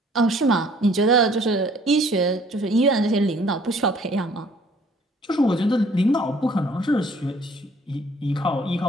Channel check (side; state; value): both; normal; correlation 0.57